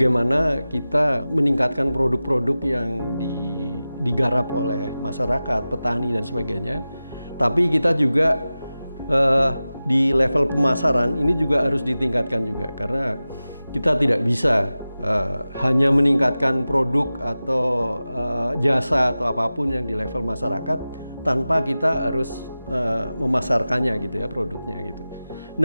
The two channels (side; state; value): both; inverted; correlation -0.95